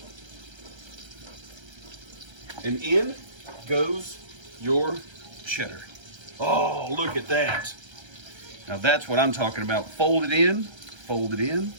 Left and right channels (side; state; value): left; late; 1.3 ms